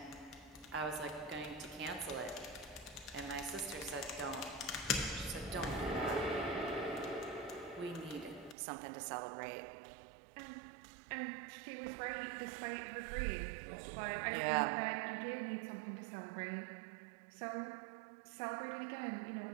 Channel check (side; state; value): left; drops out; at 8.6 s